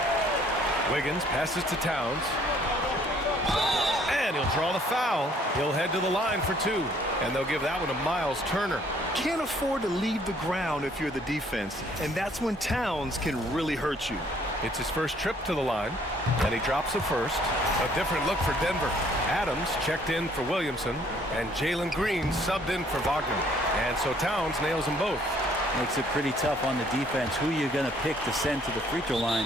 Wiggins passes to Towns. And he'll draw the foul. He'll head to the line for 2. And they'll give that one to Miles Turner. Can't afford to leave the ground if you're the defense, and that's when Towns can really hurt you. It's his first trip to the line, and he drops the first. A different look for Denver. Adams checked in for Williamson, and Jalen Green subbed in for Wagner. And so Towns nails them both. Makes it pretty tough on the defense. Who you're going to pick to send to the free throw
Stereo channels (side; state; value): both; normal; correlation 0.61